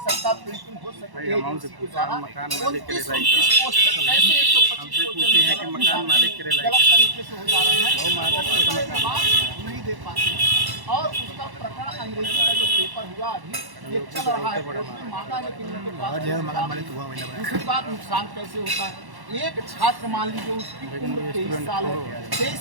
सकता, प्रिंटिंग हो सकती है, मकान मालिक के क्वेश्चन कैसे 125 है कि मकान मालिक के गलत तरीके से हो जा रहे हैं, नहीं दे पाते। और उसका प्रकरण अंग्रेजी का जो पेपर हुआ अभी ये चल रहा है, मांगा लेकिन उनके पास। दूसरी बात, नुकसान कैसे होता है, एक छात्र मान लीजिए उसकी उम्र 23 साल है, 23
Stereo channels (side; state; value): left; late; 1.1 ms